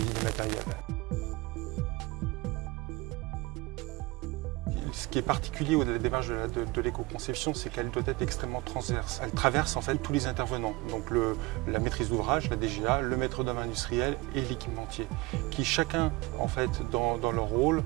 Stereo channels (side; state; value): left; quieter; 22.2 dB